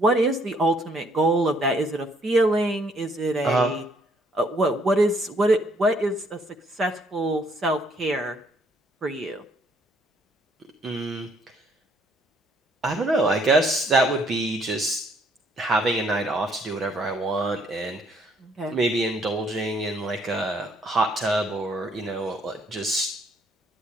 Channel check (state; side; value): normal; both; correlation 0.66